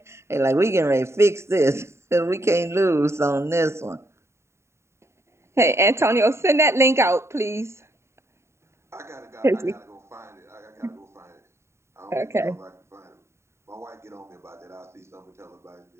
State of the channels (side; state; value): left; late; 0.13 ms